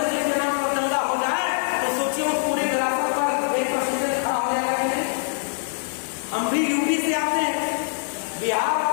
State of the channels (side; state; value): right; silent; digital silence